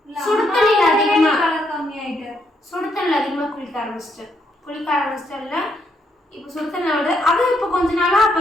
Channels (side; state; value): both; normal; correlation 0.75